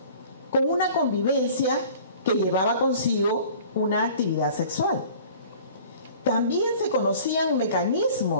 con una convivencia que llevaba consigo una actividad sexual. También se conocían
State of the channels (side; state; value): both; inverted; correlation -0.47